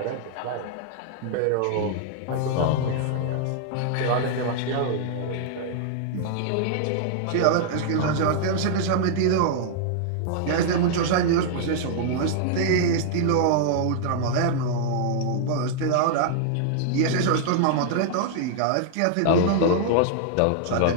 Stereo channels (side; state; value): both; different; correlation -0.01